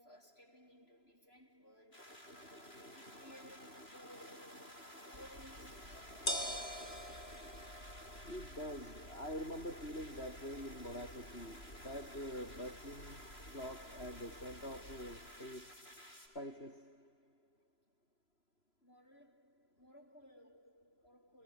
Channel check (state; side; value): late; right; 3.0 ms